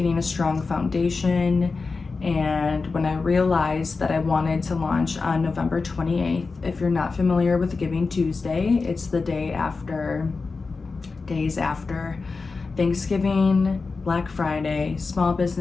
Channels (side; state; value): right; quieter; 4.2 dB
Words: a strong foundation, and when I realized that I wanted to launch on November 28th, if you're not familiar with Giving Tuesday, it's the days after Thanksgiving, Black Friday, Small